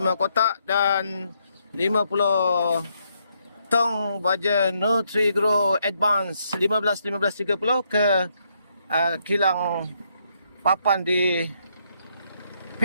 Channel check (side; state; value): both; inverted; correlation -0.75